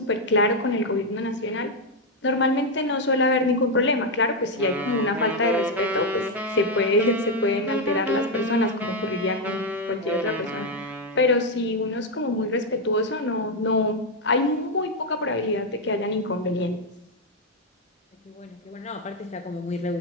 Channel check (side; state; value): both; normal; correlation 0.03